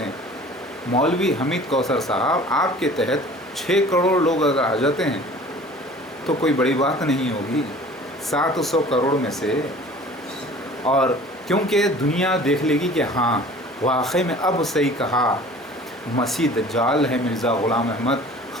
मौलवी हमीद कौसर साहब, आपके तहत 6 करोड़ लोग अगर आ जाते हैं तो कोई बड़ी बात नहीं होगी 700 करोड़ में से। और क्योंकि दुनिया देख लेगी कि हाँ वाकई में अब सही कहा, मसीह दज्जाल है मिर्ज़ा ग़ुलाम अहमद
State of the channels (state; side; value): normal; both; correlation 0.46